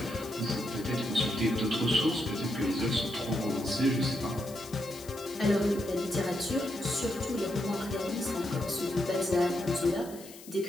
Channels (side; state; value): left; noise; hiss, 18 dB below the sound